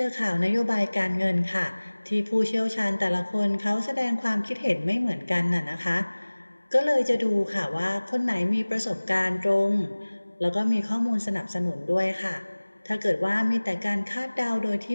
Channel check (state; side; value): inverted; both; correlation -1.00